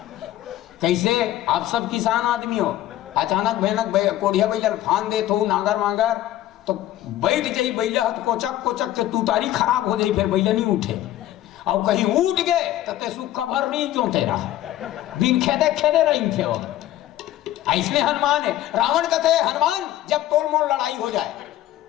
कैसे आप सब किसान आदमी हो अचानक भयानक कोड़िया बैल फान दे तो नागर मागर तो बैठ जाई बैला तो कोचक कोचक के तू तारी खराब हो जाई फिर बैला नहीं उठे। और कहीं उठ गए तो ते सुख भर नहीं जोते रहा बिन खेदे खेदे रही थे वो। ऐसने हनुमान है। रावण कहते हनुमान जब तोड़ मोड़ लड़ाई हो जाए।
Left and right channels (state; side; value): quieter; right; 13.9 dB